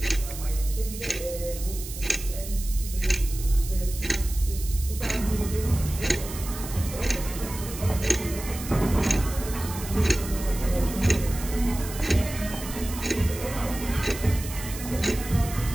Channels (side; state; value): right; noise; hiss, 11 dB below the sound